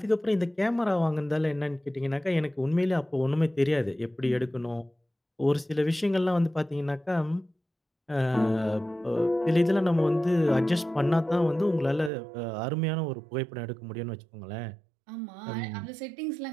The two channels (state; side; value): drops out; left; at 12.1 s